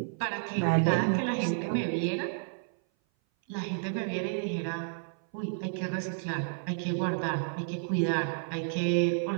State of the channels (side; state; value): left; silent; 56 dB below the other